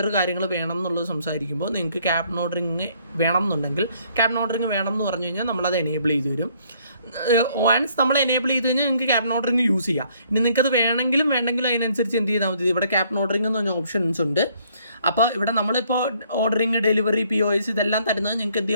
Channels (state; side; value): inverted; both; correlation -0.65